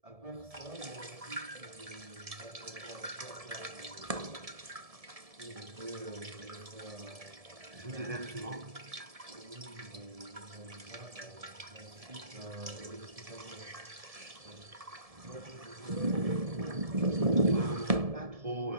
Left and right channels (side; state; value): left; late; 1.7 ms